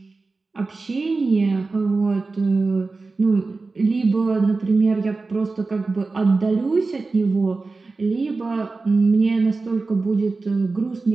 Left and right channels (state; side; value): quieter; left; 3.8 dB